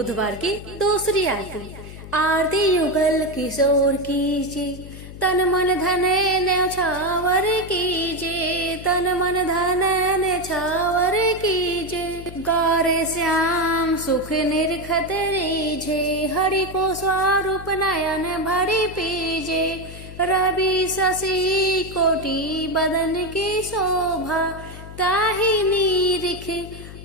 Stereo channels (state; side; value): noise; left; hum, 14 dB below the sound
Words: की दूसरी आरती। आरती युगल किशोर कीजिए, तन मन धन न्यौछावर कीजिए, तन मन धन न्यौछावर कीजिए, गौरे श्याम सुख निरखत रीझे, हरि को स्वरूप नयन भरी पीजे, रवि शशि कोटि बदन की शोभा, ताहि निरिख